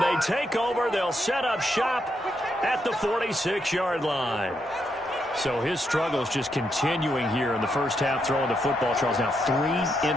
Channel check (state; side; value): normal; both; correlation 0.80